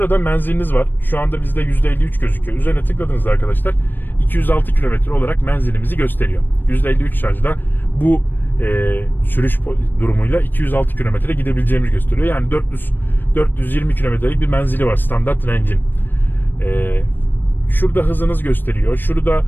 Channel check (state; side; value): late; right; 0.093 ms